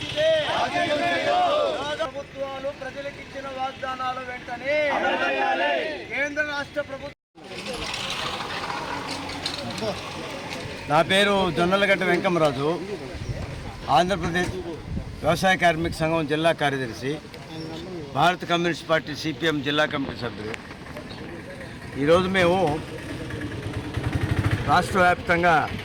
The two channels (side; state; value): both; identical; correlation 1.00